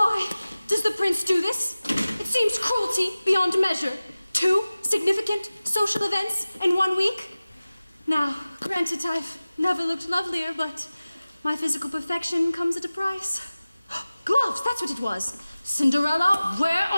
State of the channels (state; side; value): inverted; both; correlation -0.97